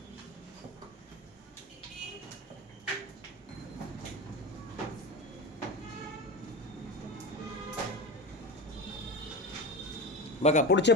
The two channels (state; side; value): normal; both; correlation 0.23